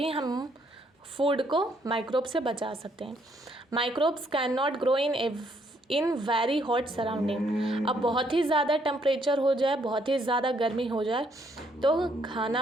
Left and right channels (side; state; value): both; normal; correlation 0.70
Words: हम फूड को माइक्रोब से बचा सकते हैं। Microbes can not grow in very hot surrounding. अब बहुत ही ज़्यादा टेम्परेचर हो जाए, बहुत ही ज़्यादा गर्मी हो जाए तो